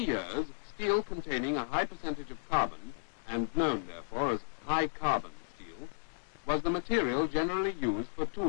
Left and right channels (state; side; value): silent; right; 55 dB below the other